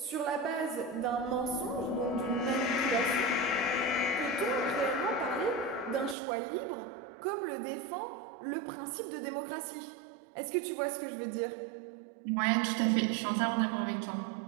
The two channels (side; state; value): left; drops out; at 6.2 s